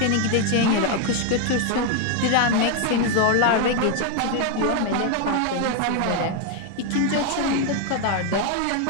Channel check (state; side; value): different; both; correlation 0.01